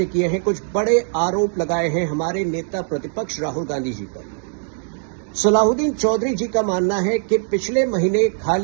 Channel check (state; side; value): silent; left; 65 dB below the other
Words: किए हैं, कुछ बड़े आरोप लगाए हैं हमारे नेता प्रतिपक्ष राहुल गांधी जी पर। सलाहुद्दीन चौधरी जी का मानना है कि पिछले महीने